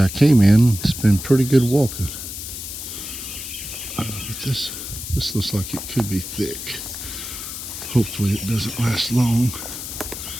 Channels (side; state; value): left; noise; hiss, 8 dB below the sound